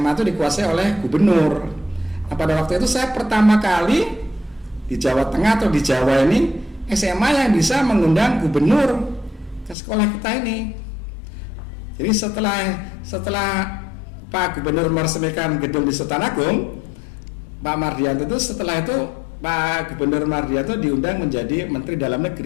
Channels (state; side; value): drops out; right; at 9.8 s